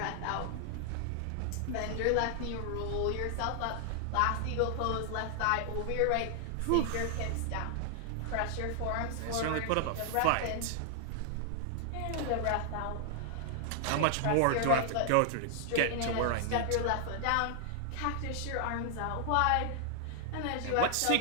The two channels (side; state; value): both; different; correlation 0.00